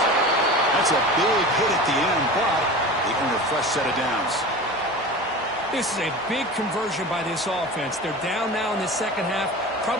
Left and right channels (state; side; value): normal; both; correlation 0.33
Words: That's a big hit at the end, but they earn a fresh set of downs. This is a big conversion by this offense. They're down now in the second half.